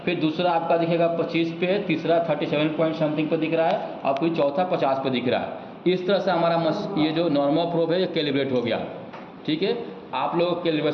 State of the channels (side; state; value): both; identical; correlation 1.00